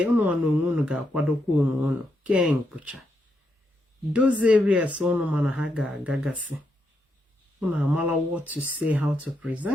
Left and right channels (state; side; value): normal; both; correlation 0.81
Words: unu ga kwadokwa unu ken pucha. Those areas unu mana haga gagasi. Unu amala what to say, how to